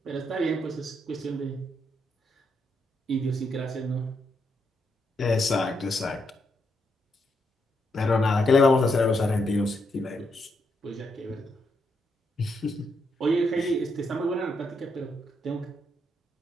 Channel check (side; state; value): both; normal; correlation 0.79